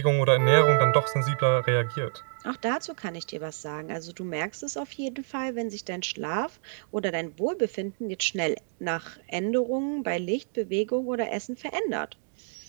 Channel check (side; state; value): left; silent; digital silence